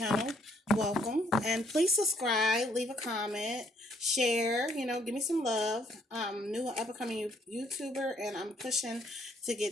welcome. And please subscribe, leave a comment, share, give me some love. New up-and-coming YouTuber, and I'm pushing to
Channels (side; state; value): both; normal; correlation 0.67